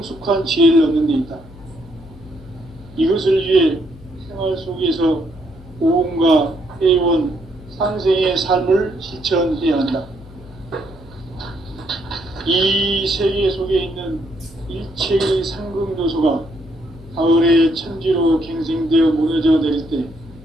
지혜를 얻는 데 있다. 이것을 위해 생활 속에서 오음과 회원, 상생의 삶을 실천해야 한다. 이 세계 속에 있는 일체의 상극 요소가 가을의 천지로 갱생되어 무너져 내릴 때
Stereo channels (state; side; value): noise; left; hum, 20 dB below the sound